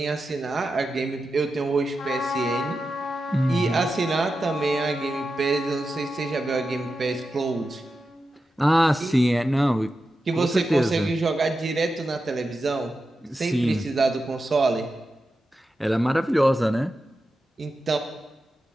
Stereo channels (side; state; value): both; normal; correlation 0.90